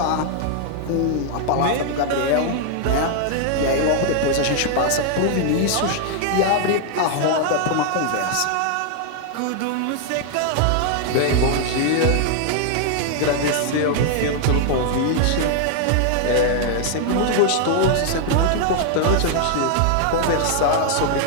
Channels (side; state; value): both; different; correlation 0.00